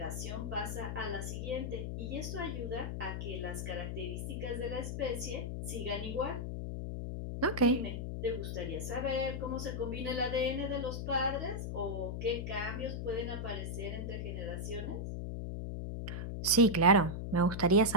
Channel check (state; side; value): noise; left; hum, 4 dB below the sound